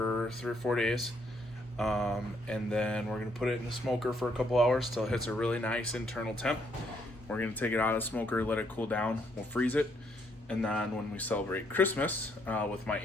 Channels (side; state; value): both; normal; correlation 0.71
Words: 3 or 4 days. And then we're going to put it in the smoker for a couple hours till it hits a really nice internal temp. We're going to take it out of the smoker, let it cool down. We'll freeze it. And then when we celebrate Christmas with my